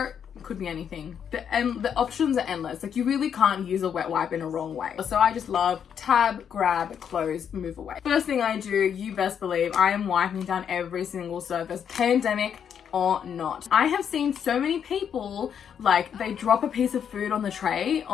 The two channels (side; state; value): right; quieter; 8.1 dB